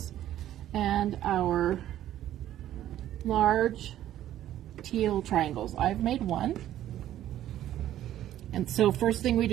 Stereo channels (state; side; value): quieter; left; 12.4 dB